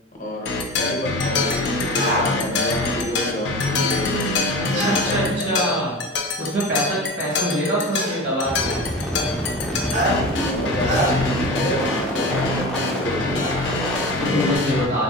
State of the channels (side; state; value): both; normal; correlation 0.31